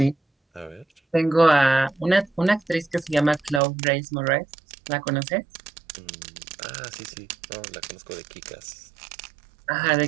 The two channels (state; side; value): drops out; left; at 3.6 s